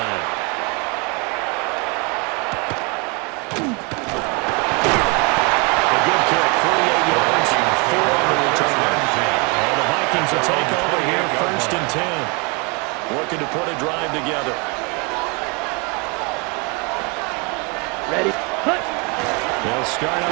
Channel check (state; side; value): quieter; left; 31.3 dB